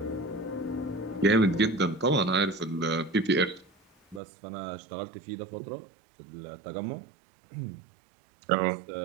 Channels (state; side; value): drops out; left; at 4.2 s